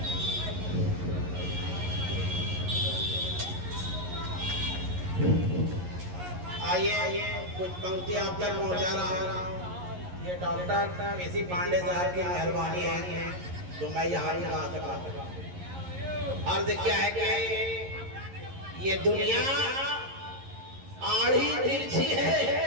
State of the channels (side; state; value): left; late; 11 ms